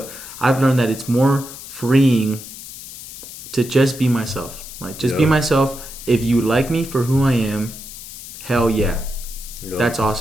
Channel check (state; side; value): noise; left; hiss, 13 dB below the sound